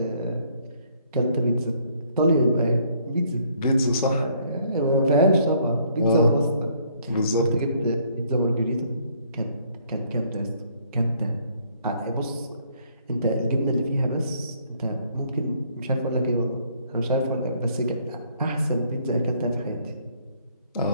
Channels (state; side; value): inverted; both; correlation -0.65